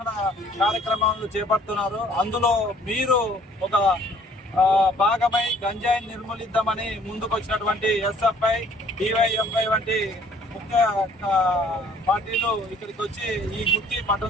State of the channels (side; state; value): both; normal; correlation 0.58